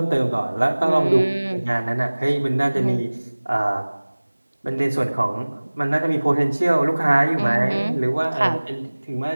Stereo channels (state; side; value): inverted; both; correlation -1.00